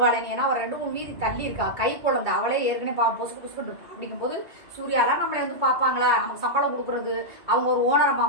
ஏன்னா அவர் 2-3 வீதி தள்ளி இருக்கா, கை குழந்தை, அவளே ஏற்கனவே பாவம் பொசுக்கு பொசுக்கு இருப்பா. அப்படிங்கும்போது சூர்யாலாம் நம்மளை வந்து பார்ப்பாங்களா, நமக்கு சம்பளம் கொடுக்குறது அவங்க ஒரு ஓனரமா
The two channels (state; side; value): late; left; 2.3 ms